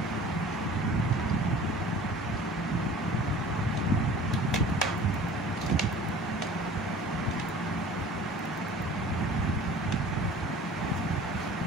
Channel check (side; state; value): both; normal; correlation 0.44